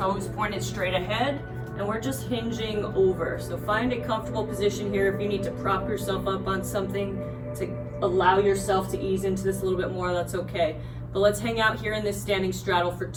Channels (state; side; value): identical; both; correlation 1.00